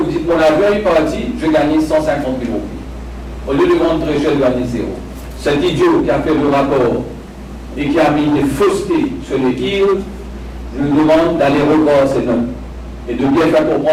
dites, mon avion est parti, je gagne 150 000 roupies. Au lieu de vendre très cher, je gagne 0. Cet idiot qui a fait le rapport et qui a mis des faussetés sur les yields, je lui demande d'aller revoir ces notes et de bien faire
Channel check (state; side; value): identical; both; correlation 1.00